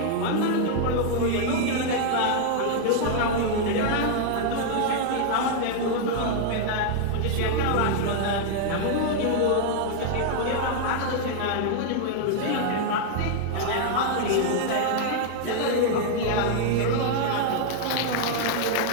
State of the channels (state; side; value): different; both; correlation 0.00